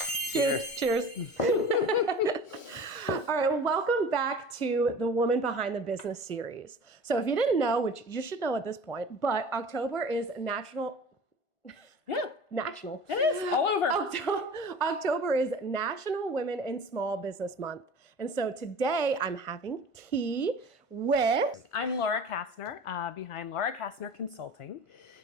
Cheers. All right, well, welcome back to the Woman Behind the Business series. So if you didn't know, which you should know at this point, but October is National. It is all over. October is National Women in Small Business Month. And so today I'm having tea with... I'm Laura Kastner, behind Laura Kastner Consulting,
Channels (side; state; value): right; late; 1.5 ms